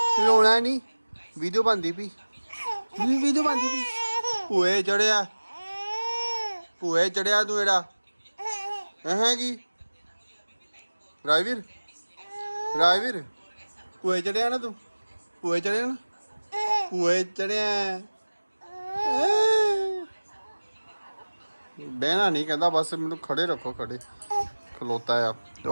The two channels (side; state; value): both; inverted; correlation -1.00